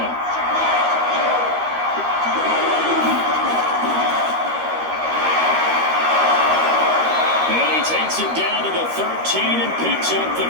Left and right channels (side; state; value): left; late; 13 ms